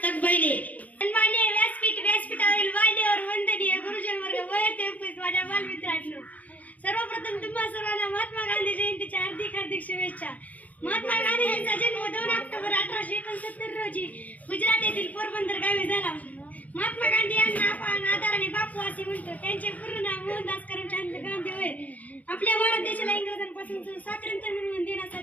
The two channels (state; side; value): late; right; 0.075 ms